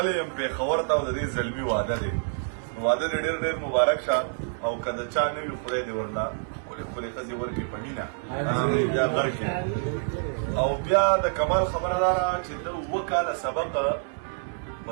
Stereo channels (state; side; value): silent; left; digital silence